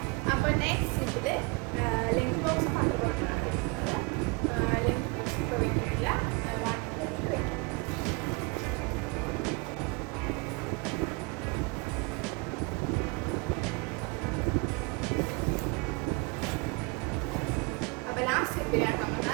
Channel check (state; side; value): quieter; left; 28.5 dB